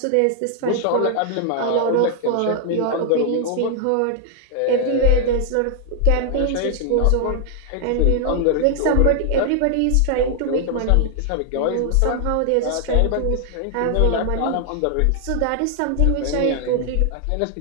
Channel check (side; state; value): both; different; correlation 0.00